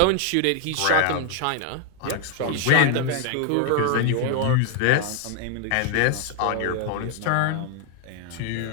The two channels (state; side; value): different; both; correlation 0.01